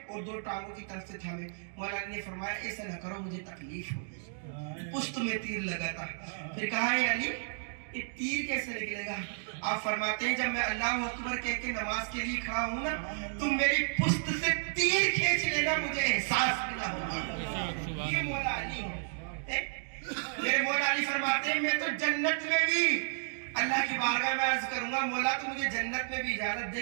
اور 2 ٹانگوں کی طرف سے تھامے۔ مولا علی نے فرمایا ایسا نہ کرو، مجھے تکلیف ہوگی، پشت میں تیر لگا تھا۔ پھر کہا ہے علی یہ تیر کیسے نکلے گا؟ آپ فرماتے ہیں جب میں اللہ اکبر کہہ کے نماز کے لیے کھڑا ہوں نا، تم میری پشت سے تیر کھینچ لینا، مجھے احساس بھی نہ ہوگا۔ یہ مولا علی ہے۔ میرے مولا علی فرماتے ہیں میں تو جنت میں بھی اللہ کی بارگاہ میں عرض کروں گا، مولا تو مجھے جنت میں بھی اجازت دے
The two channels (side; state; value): left; silent; digital silence